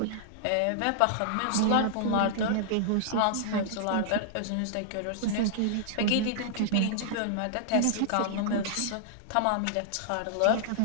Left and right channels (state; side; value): different; both; correlation -0.01